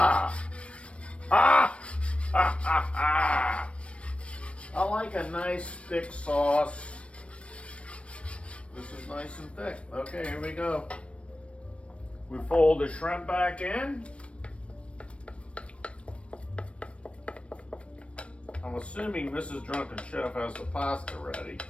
Ah! Ha, ha, ha. I like a nice thick sauce. This is nice and thick. Okay, here we go. We fold the shrimp back in. I'm assuming Mrs. Drunken Chef has the pasta ready.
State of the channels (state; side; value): late; right; 0.061 ms